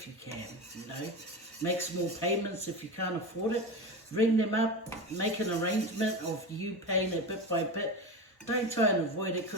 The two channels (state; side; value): normal; both; correlation 0.23